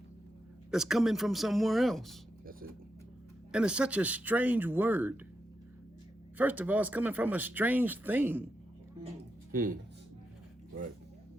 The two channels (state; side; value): normal; both; correlation 0.86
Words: that's coming from somewhere else. That's it. And it's such a strange word. First of all, it's coming from a strange thing. Right.